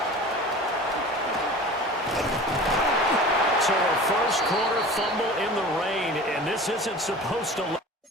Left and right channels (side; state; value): both; normal; correlation 0.38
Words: corner fumble in the rain, and this isn't supposed to let